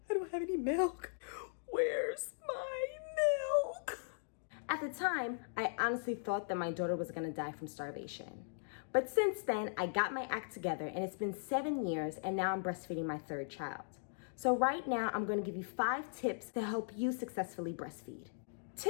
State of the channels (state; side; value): silent; right; digital silence